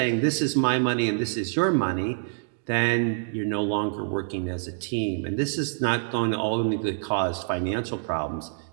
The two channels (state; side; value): silent; left; digital silence